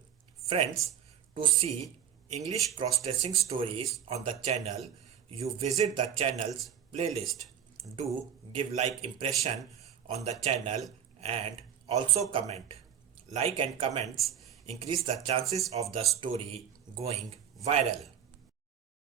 Friends, to see English cross dressing stories on the channel, you visit the channel's playlist. Do give like impression on the channel and also comment. Like and comments increase the chances of the story going viral.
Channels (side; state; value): left; quieter; 8.9 dB